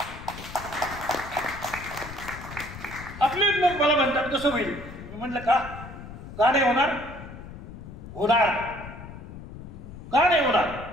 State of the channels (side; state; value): left; noise; rumble, 13 dB below the sound